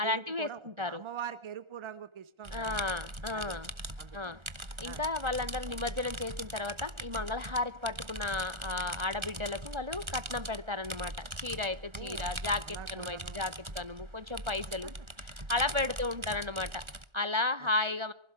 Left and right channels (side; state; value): left; late; 1.3 ms